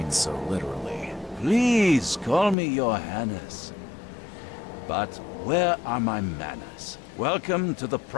so literally. Please call me Johannes. But where are my manners? Welcome to the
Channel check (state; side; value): drops out; right; at 2.6 s